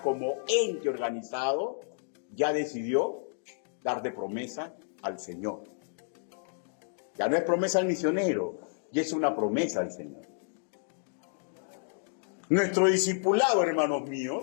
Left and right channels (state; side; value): silent; right; digital silence